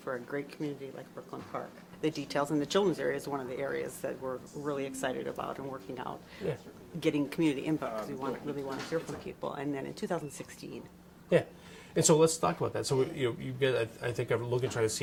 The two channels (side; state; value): both; identical; correlation 1.00